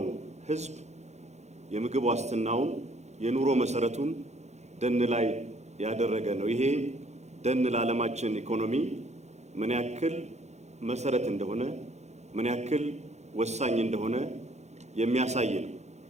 ሕዝብ የምግብ ዋስትናውን የኑሮ መሰረቱን ደን ላይ ያደረገ ነው። ይሄ ደን ለዓለማችን ኢኮኖሚ ምን ያክል መሰረት እንደሆነ ምን ያክል ወሳኝ እንደሆነ የሚያሳይ ነው።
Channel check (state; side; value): late; left; 0.33 ms